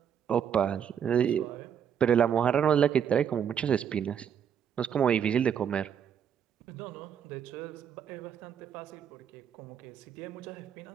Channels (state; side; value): quieter; left; 8.3 dB